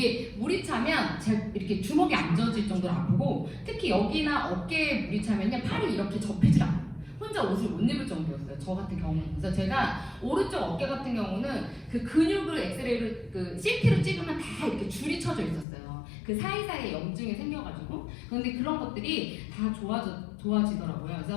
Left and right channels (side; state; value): right; drops out; at 15.7 s